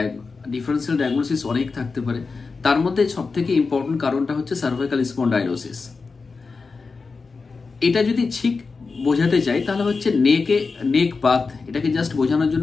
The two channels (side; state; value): right; quieter; 4.4 dB